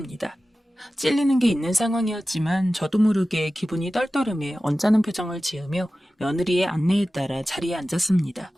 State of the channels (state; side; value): normal; both; correlation 0.95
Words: 찔리는 게 있는 상황이었지만 저도 모르게 기분이 떨떠름해 언짢은 표정을 지으며 며느리의 안내에 따라 자리에 앉았습니다.